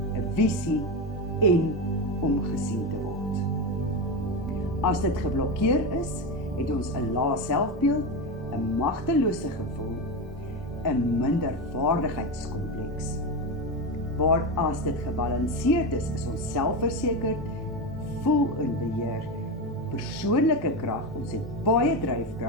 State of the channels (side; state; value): both; normal; correlation 0.16